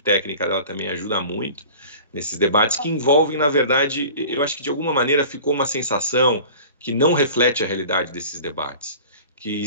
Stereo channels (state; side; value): inverted; both; correlation -0.41